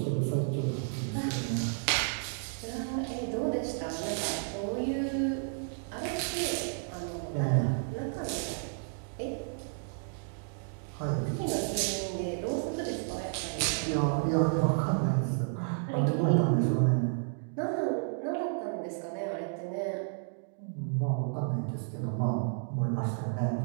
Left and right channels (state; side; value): silent; left; digital silence